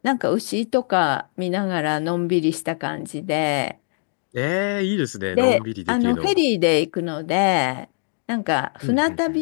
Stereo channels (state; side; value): silent; right; 64 dB below the other